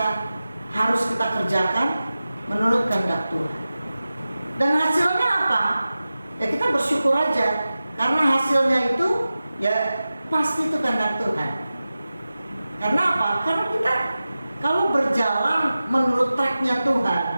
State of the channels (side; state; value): both; inverted; correlation -0.95